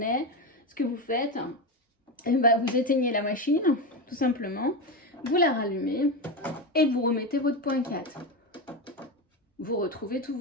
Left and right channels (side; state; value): both; normal; correlation 0.16